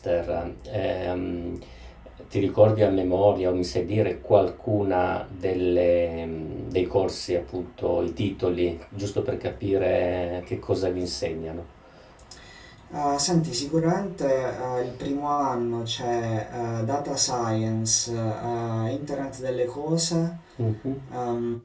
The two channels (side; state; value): both; identical; correlation 1.00